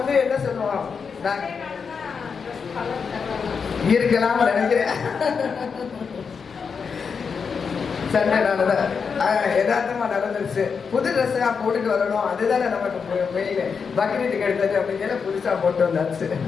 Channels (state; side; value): quieter; right; 5.8 dB